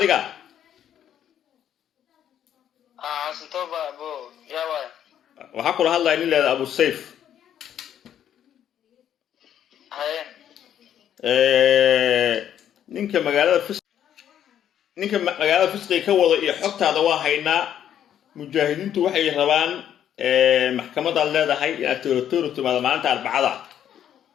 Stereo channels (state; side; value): quieter; right; 10.1 dB